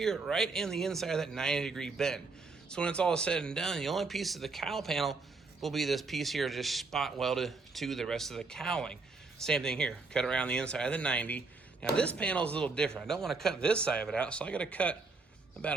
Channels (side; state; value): left; quieter; 4.0 dB